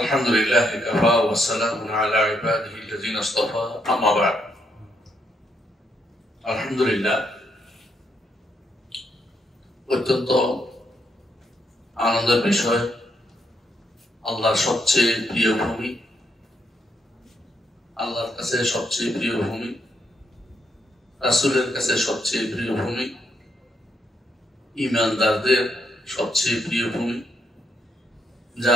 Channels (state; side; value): normal; both; correlation 0.77